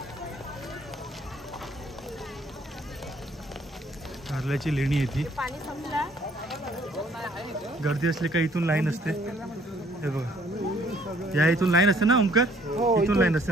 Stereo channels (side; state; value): both; normal; correlation 0.62